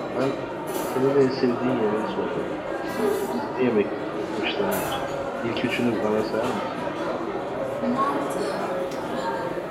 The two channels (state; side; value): identical; both; correlation 1.00